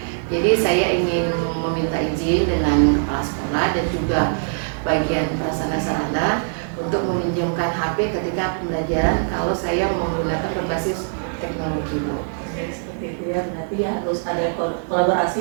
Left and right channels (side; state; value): left; silent; digital silence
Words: Jadi saya ingin meminta izin dengan kepala sekolah dan juga bagian prasarana sarana untuk meminjamkan HP ketika pembelajaran kalau saya menggunakan berbasis teknologi, Bu. Seperti itu ya, berarti harus ada kolaborasi